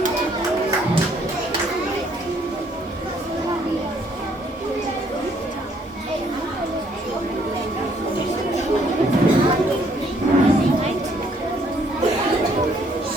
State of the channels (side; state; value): both; normal; correlation 0.66